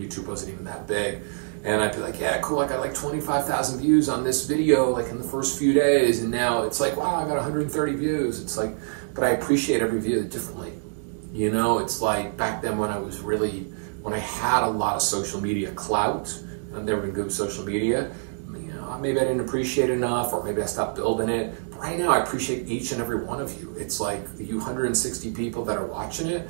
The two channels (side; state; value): left; silent; digital silence